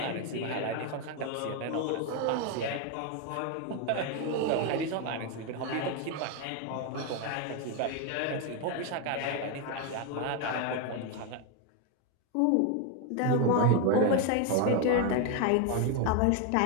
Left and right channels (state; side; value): different; both; correlation 0.01